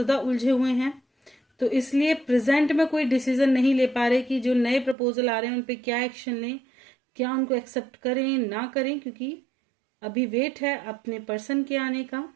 उलझे हुए हैं, तो इसलिए प्रेजेंट में कोई डिसीजन नहीं ले पा रहे कि जो नए प्रपोजल आ रहे हैं उन पे क्या एक्शन लें, क्या उनको एक्सेप्ट करें ना करें, क्योंकि अभी वेट है अपने पर्सन के आने का,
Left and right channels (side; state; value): left; drops out; at 5.0 s